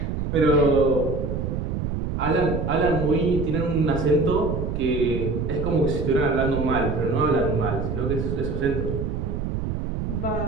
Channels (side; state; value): right; noise; rumble, 3 dB below the sound